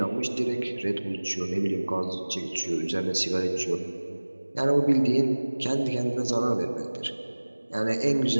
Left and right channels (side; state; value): both; inverted; correlation -1.00